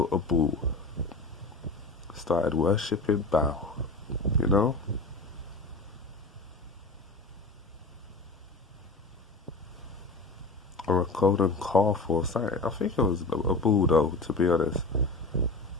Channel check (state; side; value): quieter; right; 3.2 dB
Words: a bull. Started worshipping Baal, you know? Or a golden calf or something. I think it was a bull though, to be honest.